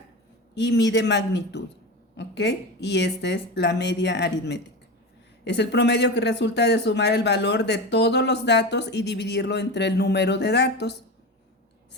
y mide magnitud, ¿ok? Y esta es la media aritmética. Es el promedio que resulta de sumar el valor de todos los datos y dividirlo entre el número de datos,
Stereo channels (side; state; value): both; normal; correlation 0.24